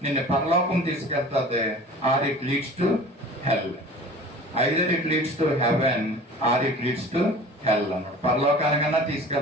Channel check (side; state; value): both; normal; correlation 0.42